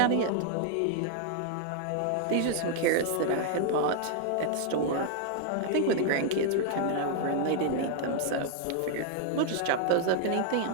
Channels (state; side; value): different; both; correlation 0.00